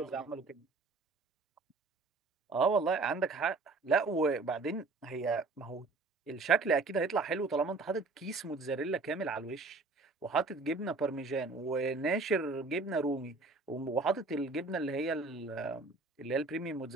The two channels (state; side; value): quieter; left; 3.7 dB